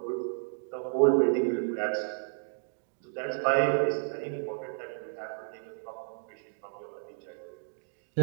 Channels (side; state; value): left; silent; digital silence